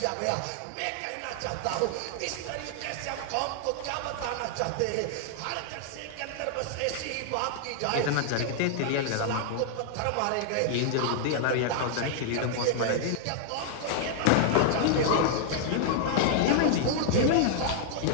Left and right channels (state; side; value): different; both; correlation -0.01